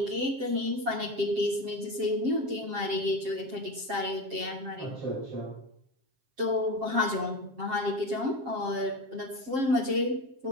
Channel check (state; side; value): late; left; 7.5 ms